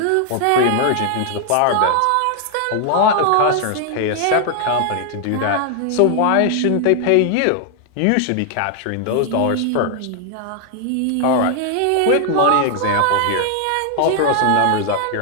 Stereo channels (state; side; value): different; both; correlation 0.00